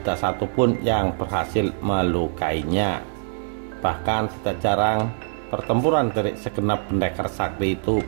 satupun yang berhasil melukainya. Bahkan tidak jarang pertempuran dari segenap pendekar sakti itu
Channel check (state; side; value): silent; left; 63 dB below the other